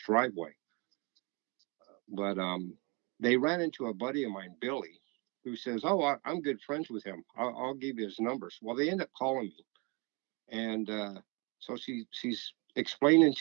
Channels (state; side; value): quieter; left; 30.7 dB